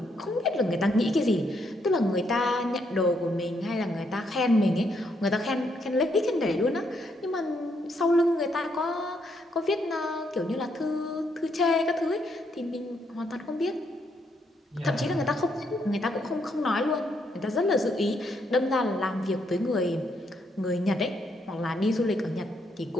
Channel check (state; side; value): normal; both; correlation 0.75